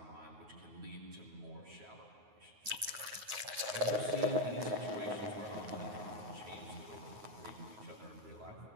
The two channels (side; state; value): left; late; 9.5 ms